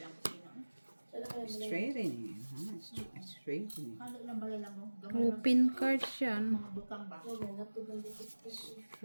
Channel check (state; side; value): inverted; both; correlation -1.00